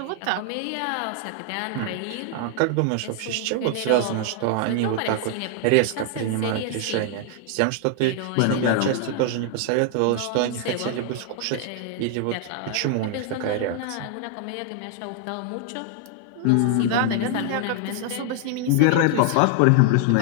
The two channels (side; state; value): both; different; correlation 0.00